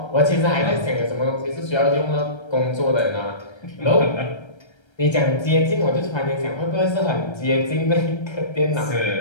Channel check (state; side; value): late; right; 1.3 ms